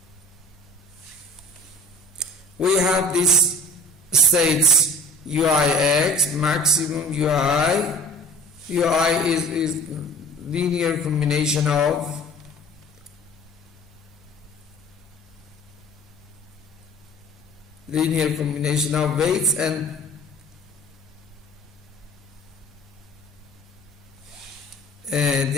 have these states UIX, maximum UI. UI is linear combination of weights and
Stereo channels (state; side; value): normal; both; correlation 0.45